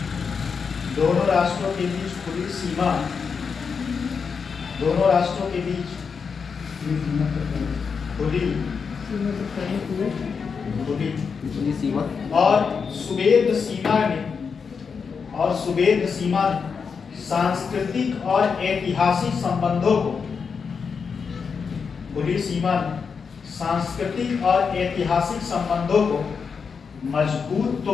दोनों राष्ट्रों के बीच खुली सीमा, दोनों राष्ट्रों के बीच खुली पुलिस सीमा और सुवेद सीमा सांस्कृतिक और ऐतिहासिक संबंधों को, खुली सीमा सांस्कृतिक और ऐतिहासिक संबंधों को मजबूत तो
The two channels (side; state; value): right; quieter; 5.8 dB